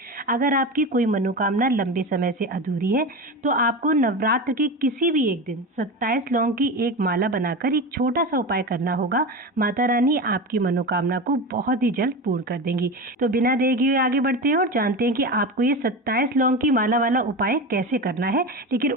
अगर आपकी कोई मनोकामना लंबे समय से अधूरी है तो आपको नवरात्र के किसी भी एक दिन 27 लौंग की एक माला बनाकर एक छोटा सा उपाय करना होगा। माता रानी आपकी मनोकामना को बहुत ही जल्द पूर्ण कर देंगी। तो बिना देरी हुए आगे बढ़ते हैं और जानते हैं कि आपको ये 27 लौंग की माला वाला उपाय कैसे करना है। लेकिन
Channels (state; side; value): normal; both; correlation 0.24